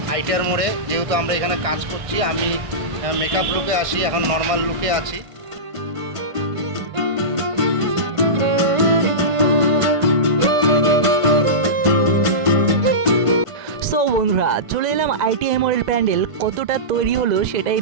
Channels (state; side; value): late; left; 1.5 ms